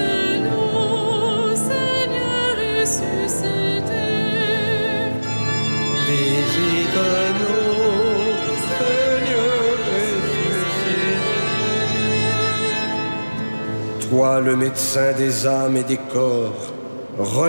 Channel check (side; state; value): both; inverted; correlation -1.00